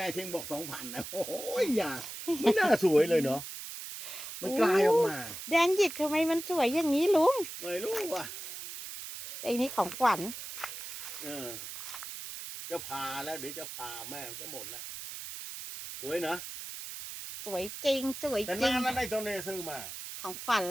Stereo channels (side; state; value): right; noise; hiss, 9 dB below the sound